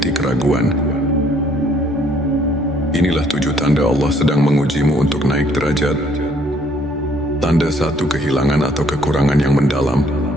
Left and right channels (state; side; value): normal; both; correlation 0.63